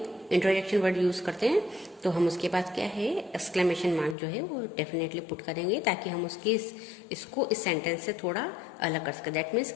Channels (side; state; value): right; drops out; at 4.2 s